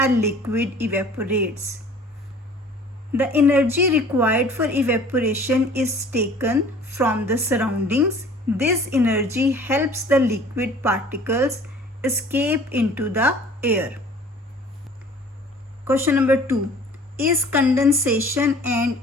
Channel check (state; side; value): normal; both; correlation 0.49